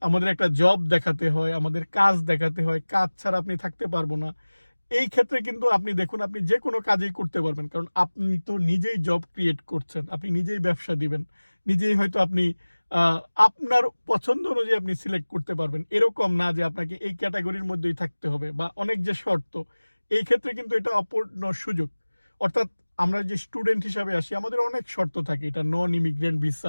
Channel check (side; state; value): both; inverted; correlation -1.00